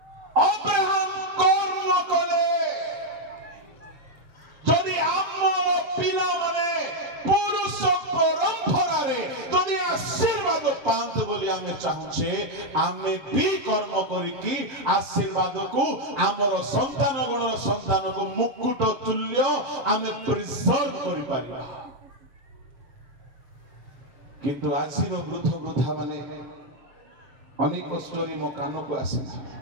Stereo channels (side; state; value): left; late; 7.5 ms